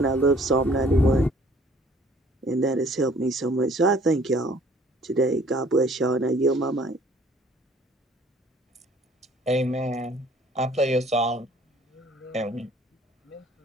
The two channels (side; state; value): both; normal; correlation 0.56